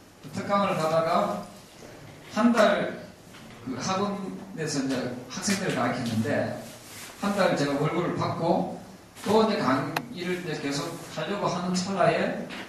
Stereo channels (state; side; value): identical; both; correlation 1.00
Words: 특강을 가다가 한 달 학원에서 이제 학생들을 가르쳤는데 한 달 제가 월급을 받고 또 이제 강의를 이제 계속 하려고 하는 찰나에